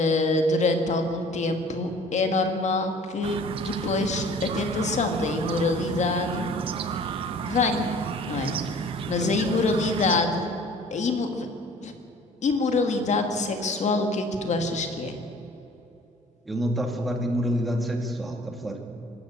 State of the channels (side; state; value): both; normal; correlation 0.49